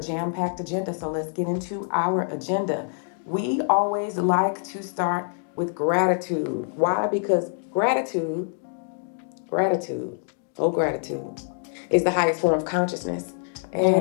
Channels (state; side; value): silent; right; 61 dB below the other